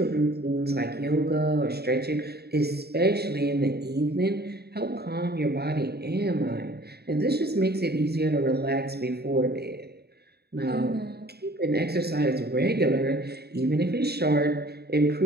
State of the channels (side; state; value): left; late; 0.47 ms